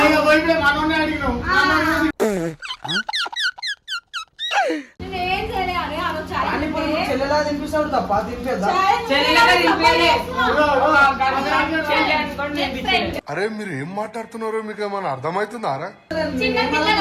మనోనే అడిగినావు చెల్లెలా తినిపిస్తాడు తప్ప తినిపేద్దా అరే మీరు ఏం మాట్లాడుతున్నారో మీకు ఏమైనా అర్థమవుతుందారా?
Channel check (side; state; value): both; identical; correlation 1.00